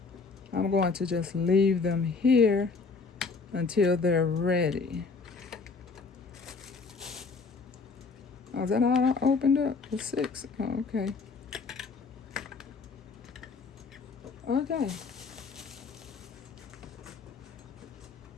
I'm going to just leave them here until they're ready. Oh, is that all I opened up? The 6. Oh, okay. Okay.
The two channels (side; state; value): right; quieter; 4.5 dB